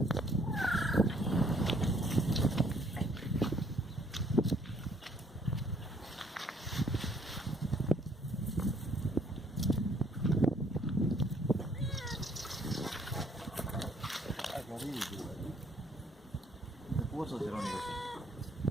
Puso si ronii così.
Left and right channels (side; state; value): both; normal; correlation 0.64